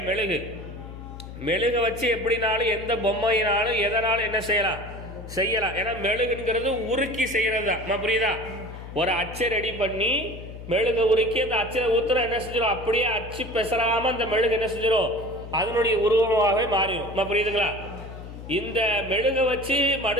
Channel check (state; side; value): noise; left; hum, 12 dB below the sound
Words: மெழுகை வச்சு எப்படினாலும் எந்த பொம்மையினாலும் எதனாலும் என்ன செய்யலாம். ஏன்னா மெழுகுங்கிறது உருக்கி செய்யறது தான். புரியுதா? ஒரு அச்சை ரெடி பண்ணி மெழுகை உருக்கி அந்த அச்சை ஊத்துற என்ன செஞ்சிடும், அப்படியே அச்சு பெசராம அந்த மெழுகு என்ன செஞ்சிடும், அதனுடைய உருவமாகவே மாறிடும். புரியுதுங்களா? இந்த மெழுகை வச்சு